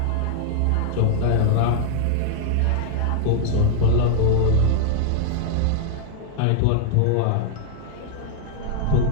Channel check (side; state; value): both; different; correlation 0.00